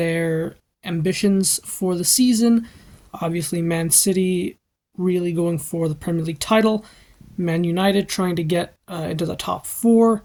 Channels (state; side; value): identical; both; correlation 1.00